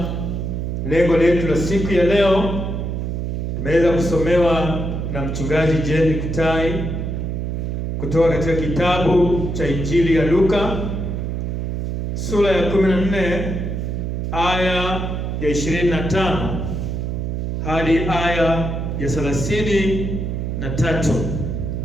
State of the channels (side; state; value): right; noise; hum, 2 dB below the sound